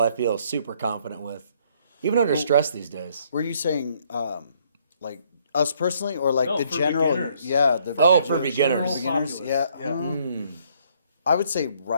feel super confident with, even under stress these days. Were you saying like us personally, or like No, the for general? beginners. Yeah. For beginners. Beginners, yeah. Yeah. I would say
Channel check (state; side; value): inverted; both; correlation -0.66